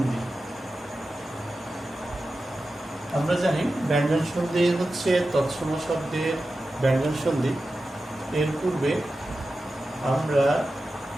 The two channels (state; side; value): normal; both; correlation 0.93